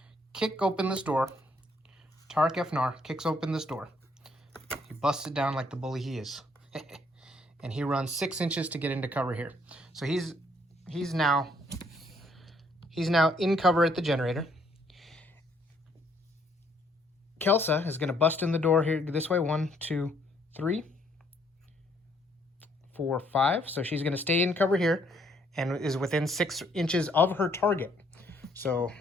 kick open this door. Tarek Efnar kicks open this door. He busts it down like the bully he is. And he runs 6 inches to get into cover here. So he's now in cover at the generator. Kelsa is going to bust in the door here this way. 1, 2, 3, 4, 5. So she's going to stay in cover here and is within 6 inches of her target. So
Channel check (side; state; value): both; normal; correlation 0.67